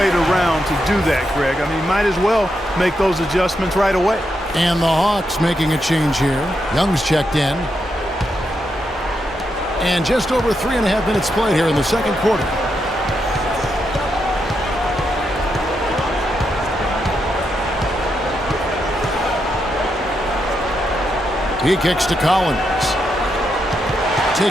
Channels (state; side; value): normal; both; correlation 0.83